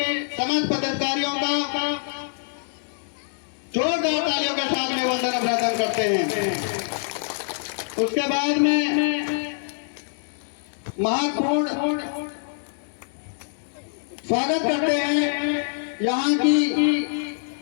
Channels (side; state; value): right; silent; digital silence